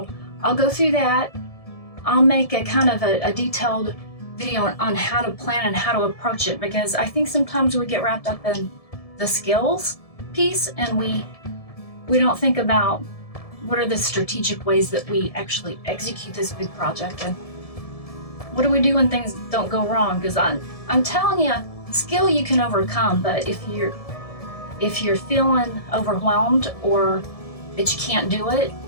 I'll go through that. I'll make a kind of a detailed video on how to plan and how to approach it, because I think sometimes we get wrapped up in the skills piece and we don't think about what are the strategic ways that we actually execute this big project, and what do we do when things don't go wrong? Because I'm telling you, skill you can overcome, but if you're feeling overwhelmed or that you can't do it,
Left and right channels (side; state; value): right; late; 1.7 ms